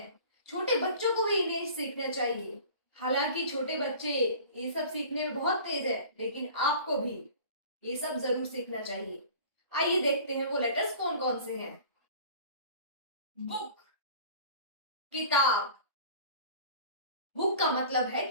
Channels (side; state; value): both; inverted; correlation -0.43